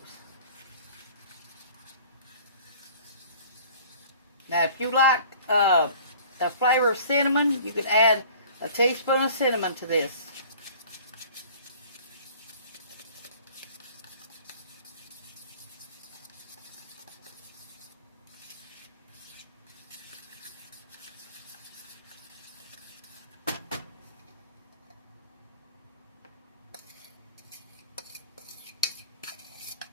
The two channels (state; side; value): inverted; both; correlation -0.48